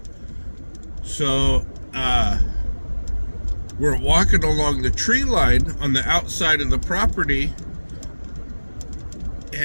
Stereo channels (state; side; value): inverted; both; correlation -1.00